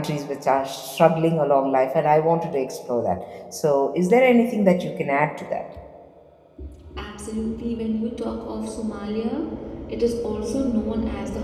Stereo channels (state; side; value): identical; both; correlation 1.00